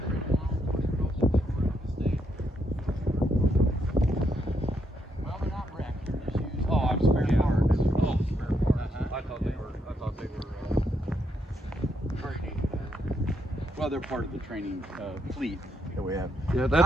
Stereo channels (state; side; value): normal; both; correlation 0.77